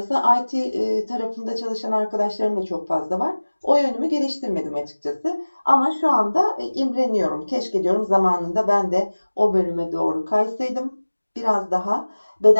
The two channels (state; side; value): inverted; both; correlation -1.00